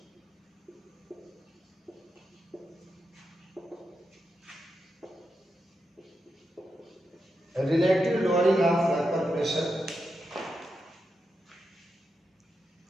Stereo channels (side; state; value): both; normal; correlation 0.87